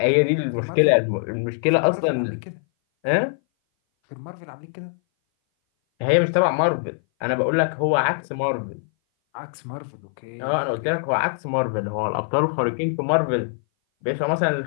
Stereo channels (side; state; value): right; silent; 59 dB below the other